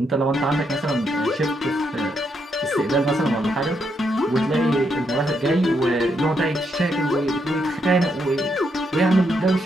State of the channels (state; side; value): normal; both; correlation 0.78